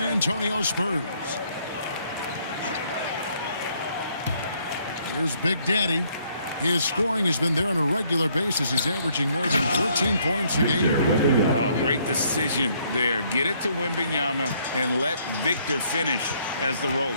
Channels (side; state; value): both; inverted; correlation -0.67